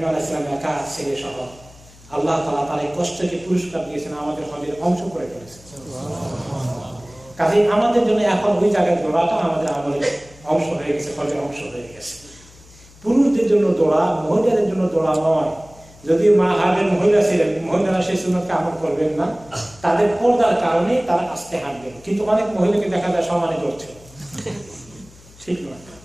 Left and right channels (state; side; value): noise; left; hum, 24 dB below the sound